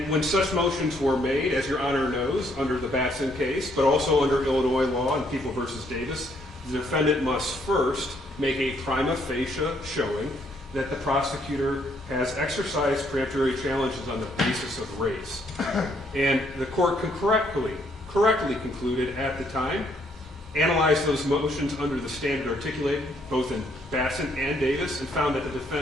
when such motions were made, as Your Honor knows, under the Batson case, but also under Illinois law and People versus Davis, the defendant must first make a prima facie showing that the prosecutor has exercised peremptory challenges on the basis of race. And the court correctly concluded at the time, analyzed those motions under the standard articulated both in Batson and Davis, and found that the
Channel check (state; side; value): normal; both; correlation 0.69